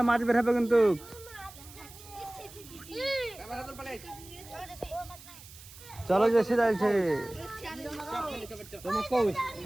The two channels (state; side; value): noise; right; hiss, 18 dB below the sound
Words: মাছ বের হবে কিন্তু। চলো জেসি যাইছে।